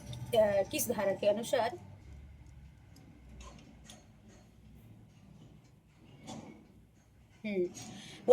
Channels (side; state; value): both; identical; correlation 1.00